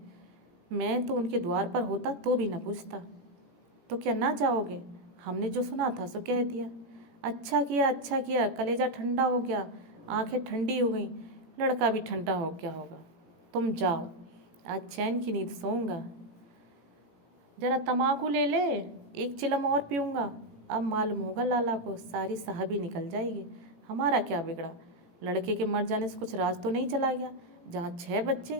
मैं तो उनके द्वार पर होता तो भी न पूछता। तो क्या ना जाओगे? हमने जो सुना था सो कह दिया। अच्छा किया, कलेजा ठंडा हो गया, आंखें ठंडी हो गई, लड़का भी ठंडा हो गया होगा। तुम जाओ, आज चैन की नींद सोऊंगा। जरा तम्बाकू ले ले, एक चिलम और पीऊँगा। अब मालूम होगा लाला को, सारी साहबी निकल जाएगी। हमारा क्या बिगड़ा? लड़के के मर जाने से कुछ राज तो नहीं चला गया? जहाँ 6 बच्चे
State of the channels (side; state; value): left; late; 17 ms